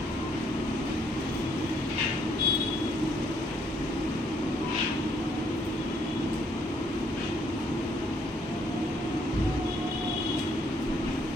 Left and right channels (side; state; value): both; normal; correlation 0.68